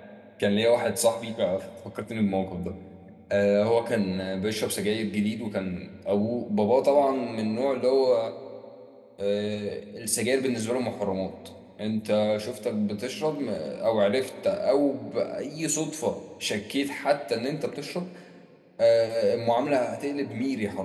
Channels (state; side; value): identical; both; correlation 1.00